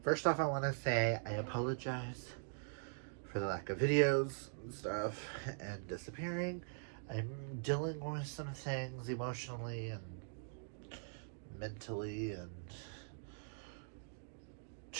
First off, I want to say I apologize for the lack of videos and stuff and disappearing. I'm dealing with some things emotionally and mentally and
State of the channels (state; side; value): silent; left; digital silence